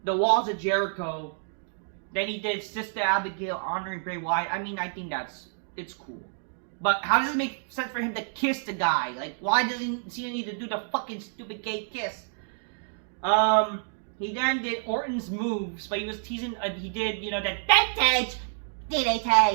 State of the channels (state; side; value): silent; left; digital silence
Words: the Walls of Jericho. Then he did Sister Abigail honoring Bray Wyatt. I mean, I think it's cool. But how does it make sense for him to kiss the guy? Like, why doesn't Cena need to do the fucking stupid gay kiss? He then did Orton's moves, but he was teasing, he did, you know, that vintage